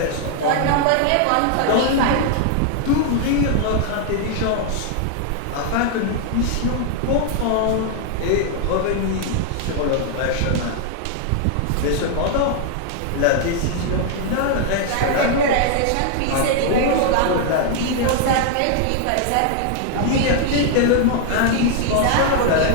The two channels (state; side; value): different; both; correlation 0.00